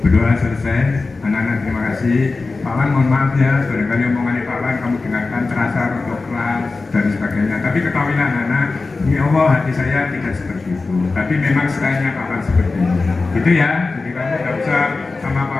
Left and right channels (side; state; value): right; quieter; 3.8 dB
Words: Berdoa selesai, anak-anak terima kasih. Pak Wan mohon maaf ya, barangkali omongannya Pak Wan kamu dengarkan terasa untuk kelas dan sebagainya. Tapi ketahuilah anak-anak, ini Allah hati saya tidak seperti itu. Tapi memang stylenya Pak Wan seperti ini. Gitu ya, jadi kamu tidak usah sama Pak